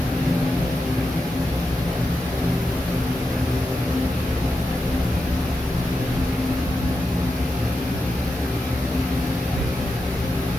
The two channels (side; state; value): both; normal; correlation 0.88